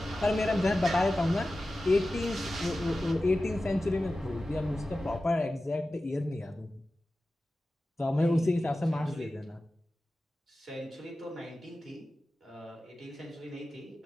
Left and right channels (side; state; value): both; normal; correlation 0.95